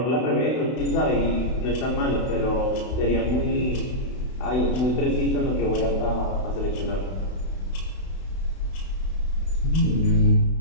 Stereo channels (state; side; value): late; right; 32 ms